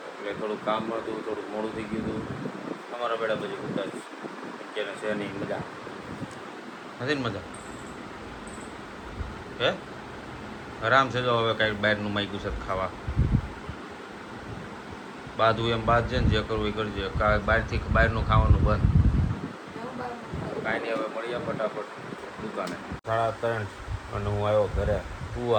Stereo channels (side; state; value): both; identical; correlation 1.00